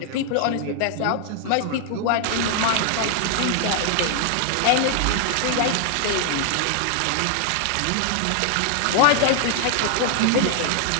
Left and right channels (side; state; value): both; different; correlation 0.00